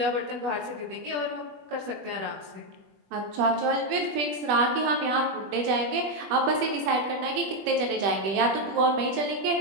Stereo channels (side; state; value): left; late; 21 ms